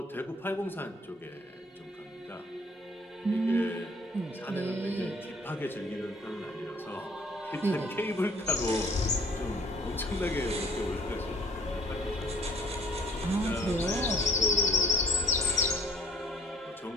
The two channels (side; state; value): both; normal; correlation 0.56